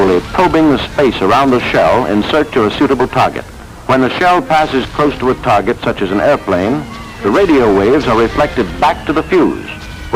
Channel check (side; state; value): both; identical; correlation 1.00